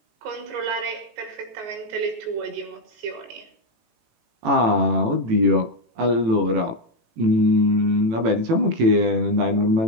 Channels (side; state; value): left; late; 18 ms